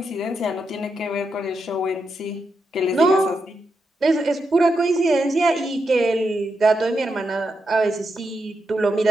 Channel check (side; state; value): both; normal; correlation 0.85